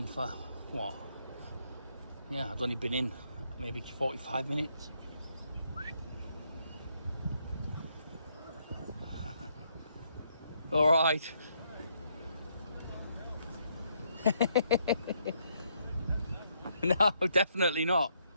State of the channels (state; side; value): inverted; both; correlation -0.73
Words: for what? Yeah, I'd only been in maybe 45 minutes. All right. No, definitely not.